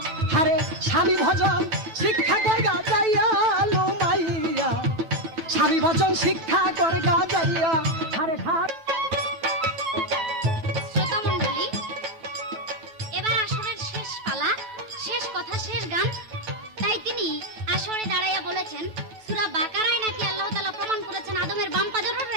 হারে স্বামী ভজন শিক্ষা কর গা যাইয়া লো মাইয়া, স্বামী ভজন শিক্ষা কর গা যাইয়া, হারে ঘাট। শ্রোতা মণ্ডলী, এবার আসরের শেষ পালা, শেষ কথা, শেষ গান। তাই তিনি আসরে দাঁড়াইয়া বলেছেন, সূরা বাকারায় নাকি আল্লাহ তাআলা প্রমাণ করেছেন আদমের বাম পাজরের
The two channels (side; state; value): left; late; 9.2 ms